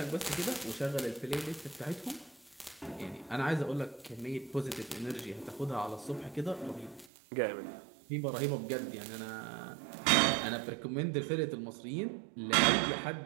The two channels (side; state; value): left; drops out; at 7.1 s